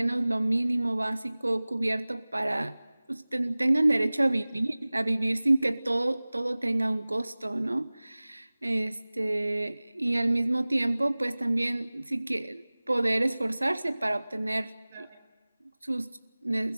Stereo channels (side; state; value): both; inverted; correlation -0.99